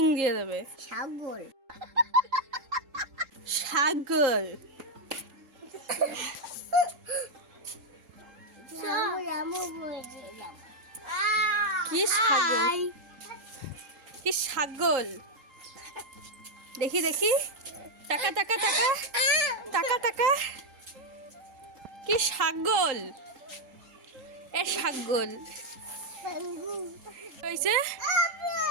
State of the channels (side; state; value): left; late; 3.7 ms